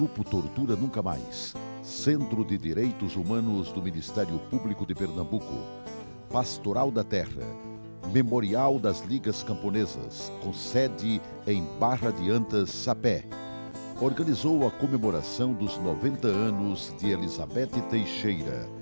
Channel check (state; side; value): inverted; both; correlation -1.00